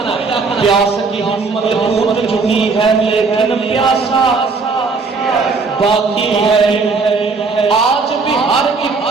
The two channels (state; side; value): quieter; left; 4.4 dB